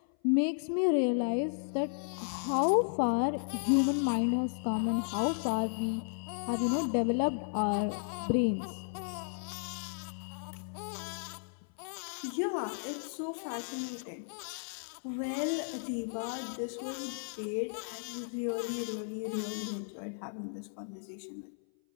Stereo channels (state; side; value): silent; right; 55 dB below the other